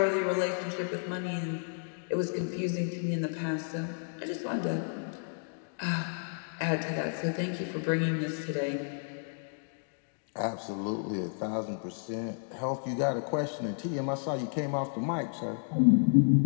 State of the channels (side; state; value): right; silent; digital silence